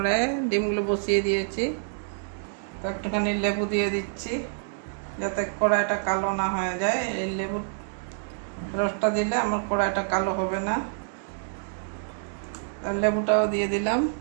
ডিমগুলো বসিয়ে দিয়েছি। তো একটুখানি লেবু দিয়ে দিচ্ছি যাতে কড়াইটা কালো না হয়ে যায়। এই লেবুর রসটা দিলে আমার কড়াইটা কালো হবে না। আর লেবুটাও দিয়ে দিলাম।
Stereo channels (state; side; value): silent; left; digital silence